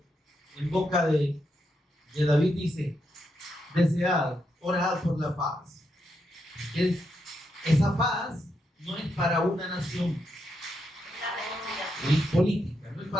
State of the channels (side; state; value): both; normal; correlation 0.82